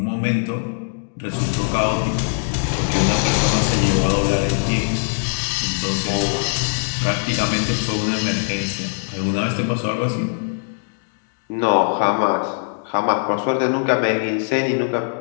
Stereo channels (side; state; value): right; silent; digital silence